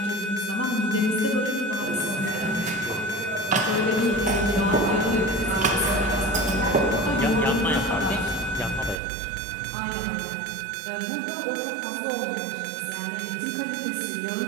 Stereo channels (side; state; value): left; drops out; at 9.0 s